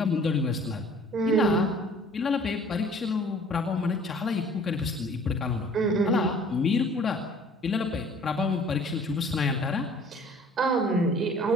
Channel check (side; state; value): both; normal; correlation 0.52